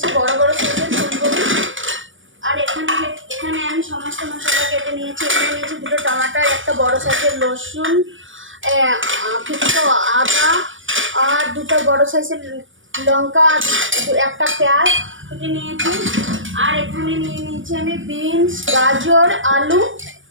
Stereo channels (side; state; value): left; late; 0.57 ms